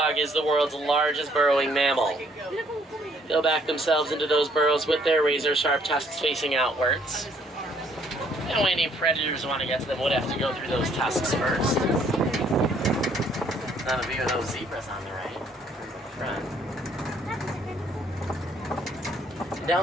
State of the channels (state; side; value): normal; both; correlation 0.65